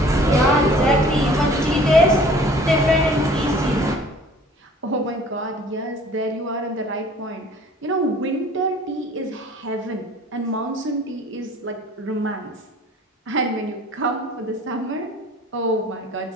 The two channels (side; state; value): both; normal; correlation 0.50